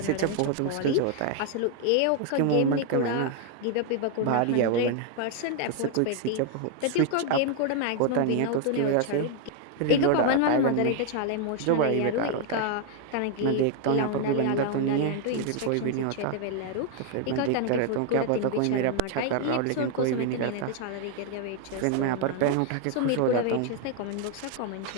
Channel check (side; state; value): both; different; correlation 0.00